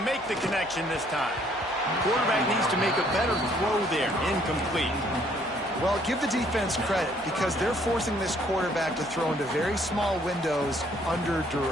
make the connection this time. Quarterback needs to make a better throw there. Incomplete. Well, give the defense credit because they're forcing this quarterback to throw into very small windows under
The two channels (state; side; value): noise; left; hum, 25 dB below the sound